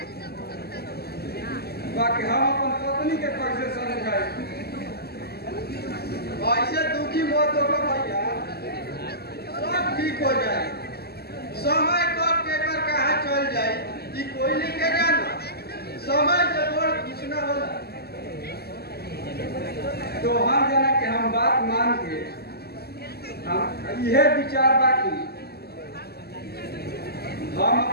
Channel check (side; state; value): right; late; 0.46 ms